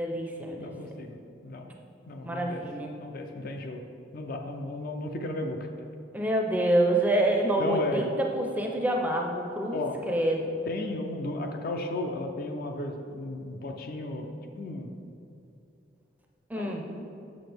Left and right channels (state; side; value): normal; both; correlation 0.52